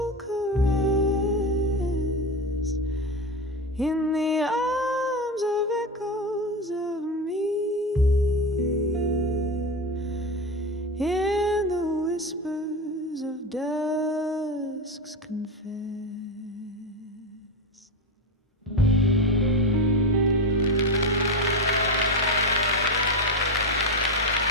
caress. In the arms of echoes of me, in the whispers of dusk's confess.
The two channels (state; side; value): normal; both; correlation 0.18